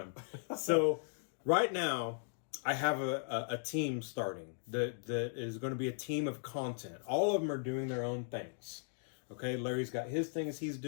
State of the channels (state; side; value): silent; right; digital silence